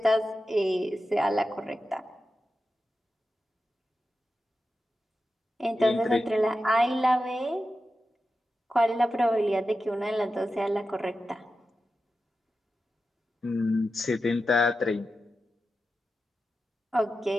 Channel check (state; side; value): normal; both; correlation 0.91